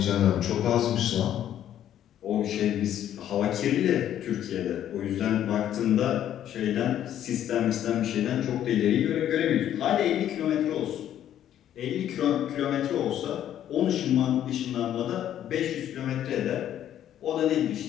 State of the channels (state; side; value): quieter; right; 11.0 dB